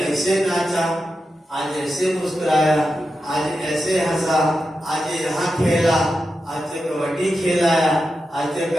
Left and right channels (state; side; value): normal; both; correlation 0.89